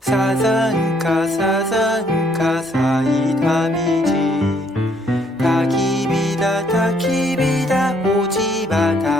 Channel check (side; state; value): both; normal; correlation 0.66